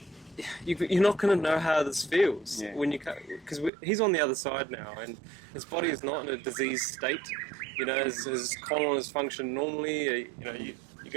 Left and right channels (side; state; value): left; drops out; at 3.7 s